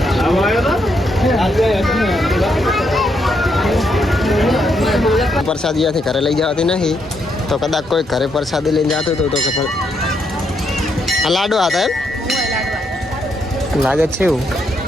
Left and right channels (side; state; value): both; normal; correlation 0.77